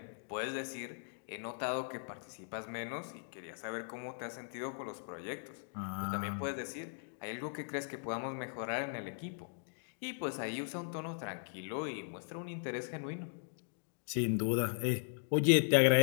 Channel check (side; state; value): right; silent; digital silence